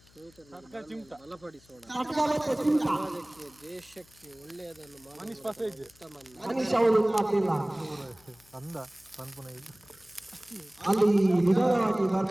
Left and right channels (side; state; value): left; noise; hum, 28 dB below the sound